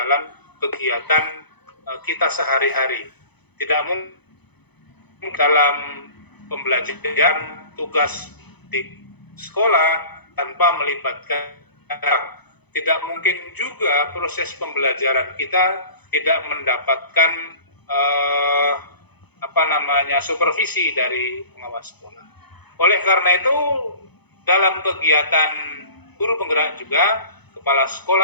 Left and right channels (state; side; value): late; right; 0.99 ms